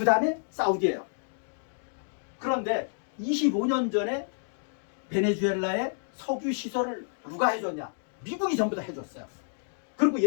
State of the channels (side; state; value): right; silent; digital silence